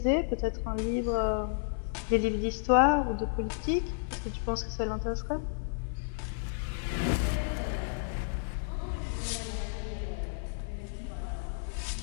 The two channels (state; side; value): silent; right; digital silence